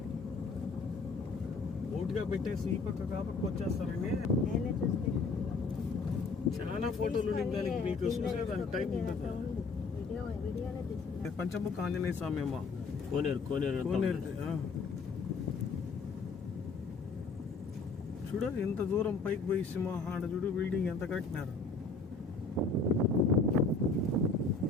ఓటుగా పెట్టేసి ఈ పక్క కాపక్క వచ్చేస్తారండి. చాలా ఫోటోలు దానికి మీకు చూసేదానికి టైం ఉంటుంది. పంచముఖ ఆంజనేయ స్వామి అమ్మ, కోనేరు కోనేరు కోనేరు. చూడు ఎంత దూరం పైకి పోయి సింహాడ చూడు బిల్డింగ్ ఎంత కట్టినారు.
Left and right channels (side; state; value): right; quieter; 4.1 dB